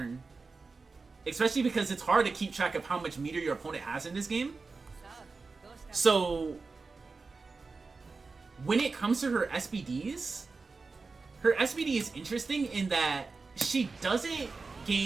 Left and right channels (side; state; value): left; quieter; 4.2 dB